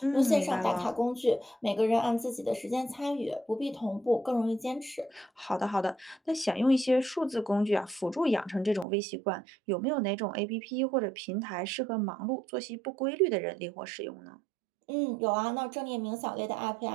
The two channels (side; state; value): left; drops out; at 8.8 s